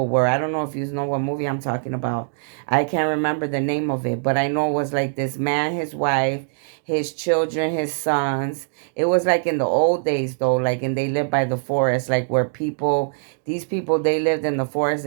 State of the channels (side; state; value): left; silent; digital silence